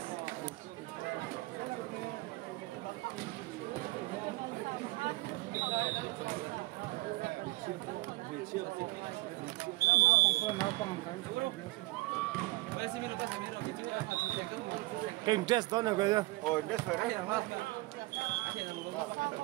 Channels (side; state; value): left; quieter; 20.3 dB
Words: cái interest đó này kìa. Oh, interest phải đấy.